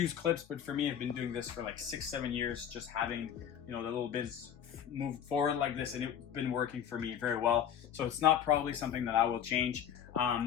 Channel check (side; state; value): right; quieter; 9.1 dB